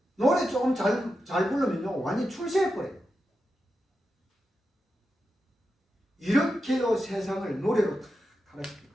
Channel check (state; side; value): normal; both; correlation 0.89